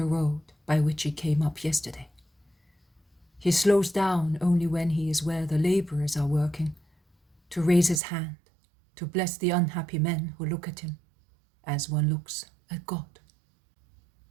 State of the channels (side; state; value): left; drops out; at 8.0 s